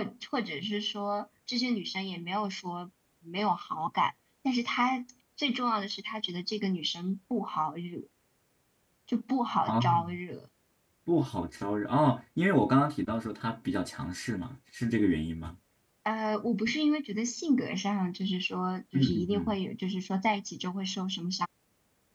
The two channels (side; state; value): both; identical; correlation 1.00